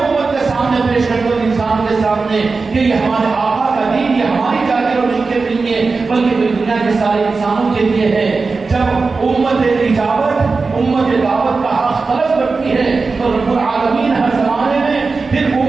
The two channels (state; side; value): quieter; left; 4.2 dB